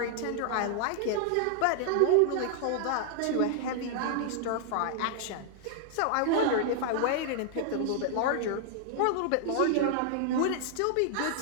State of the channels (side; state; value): both; different; correlation -0.01